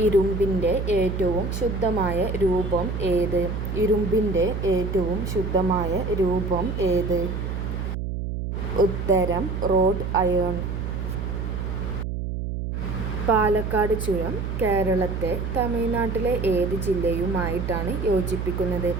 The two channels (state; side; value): noise; right; hum, 3 dB below the sound